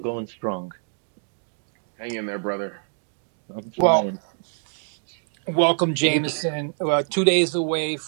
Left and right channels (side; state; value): left; silent; 62 dB below the other